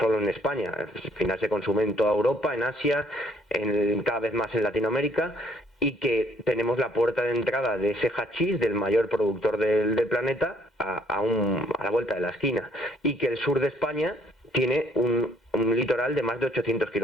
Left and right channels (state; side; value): normal; both; correlation 0.64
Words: en España. Al final se consume en toda Europa, en Asia, cada vez más en Latinoamérica, y que tenemos la puerta de entrada de ese hachís, del mayor productor del planeta, a la vuelta de la esquina, y que el sur de España tiene un litoral de más de 800